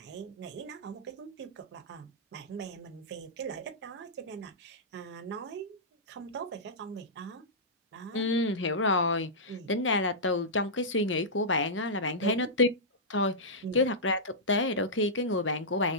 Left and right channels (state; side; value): normal; both; correlation -0.13